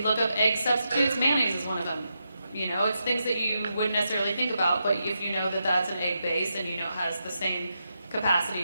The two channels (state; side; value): inverted; both; correlation -0.85